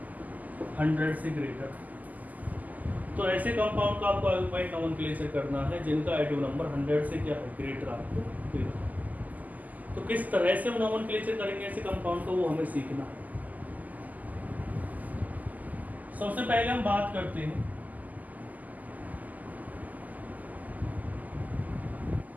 100 से ग्रेटर। तो ऐसे कंपाउंड का आपको आयुपैक नोमेनक्लेचर करना है जिनका एटॉमिक नंबर 100 से क्या है, ग्रेटर आपको देना है। तो किस तरह से हम नोमेनक्लेचर करेंगे ऐसे कंपाउंड को, वो हमें सीखना है। सबसे पहले हम बात करते हैं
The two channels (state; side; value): late; left; 0.080 ms